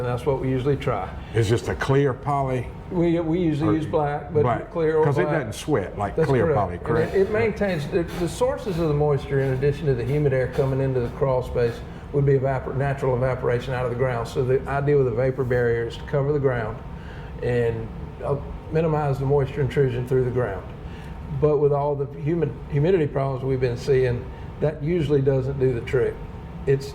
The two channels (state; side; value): identical; both; correlation 1.00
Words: that's what we usually try. It's just a clear poly. We usually use black, but clear or black. Because it doesn't sweat like That's clear correct. poly, correct? It maintains the sources of the moisture, in addition to the humid air coming into the crawl space, would be natural evaporation out of the ground. So the idea with a vapor barrier is to cover the ground and minimize the moisture intrusion through the ground. But with all the humidity problems we've been seeing, that usually doesn't do the trick.